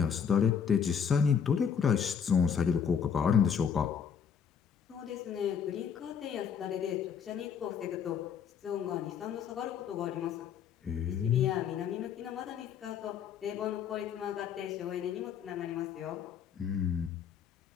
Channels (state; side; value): quieter; right; 7.3 dB